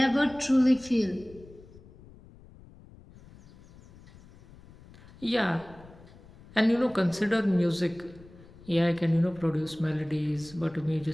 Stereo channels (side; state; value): left; noise; rumble, 22 dB below the sound